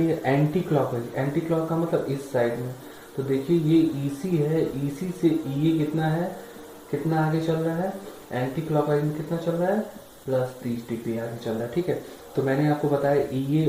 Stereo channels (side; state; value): both; identical; correlation 1.00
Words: है। एंटी क्लॉक है, एंटी क्लॉक का मतलब इस साइड में। तो देखिए ये ईसी है, ईसी से ये कितना है, कितना आगे चल रहा है, एंटी क्लॉकवाइज में कितना चल रहा है, +30 डिग्री आगे चल रहा है। ठीक है, तो मैंने आपको बताया ईए